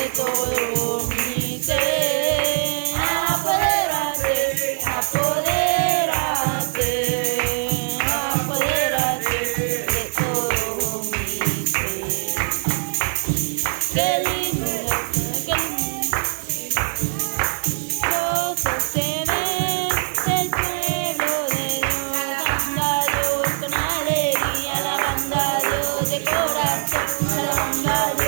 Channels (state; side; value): silent; left; 64 dB below the other